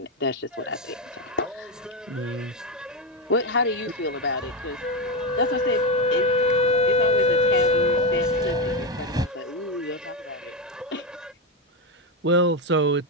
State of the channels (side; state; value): both; normal; correlation 0.10